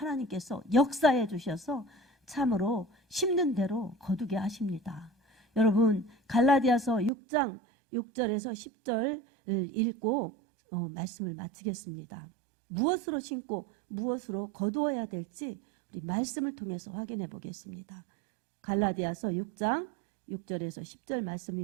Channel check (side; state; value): left; drops out; at 7.1 s